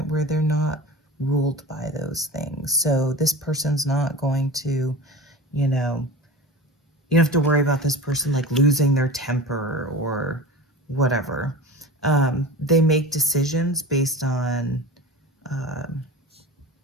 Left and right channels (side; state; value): both; normal; correlation 0.34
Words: where they're not ruled by those things. So this person's not going to, you don't have to worry about this person like losing their temper or whatever. They make decisions based on